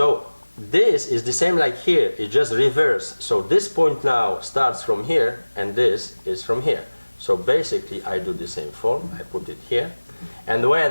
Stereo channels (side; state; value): both; inverted; correlation -1.00